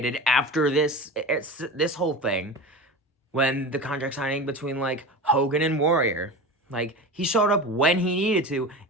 after this whole thing, when the contract signing between like Hogan and Warrior. Like, he showed up when he needed to,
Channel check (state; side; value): normal; both; correlation 0.29